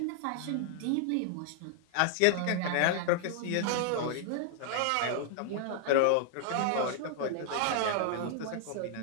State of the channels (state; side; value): different; both; correlation 0.00